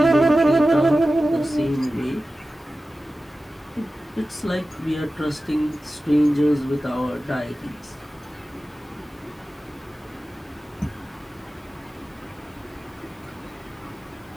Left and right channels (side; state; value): both; normal; correlation 0.95